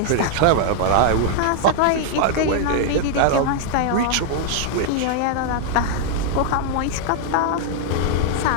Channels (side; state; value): both; different; correlation 0.00